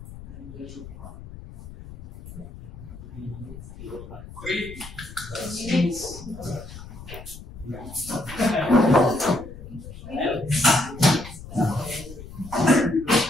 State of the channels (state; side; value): noise; left; rumble, 14 dB below the sound